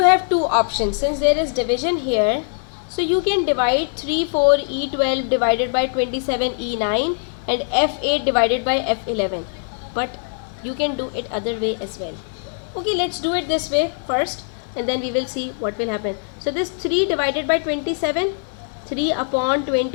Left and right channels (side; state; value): right; silent; 65 dB below the other